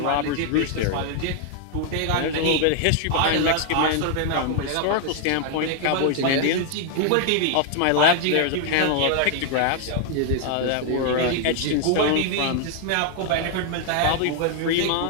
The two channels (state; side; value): different; both; correlation 0.00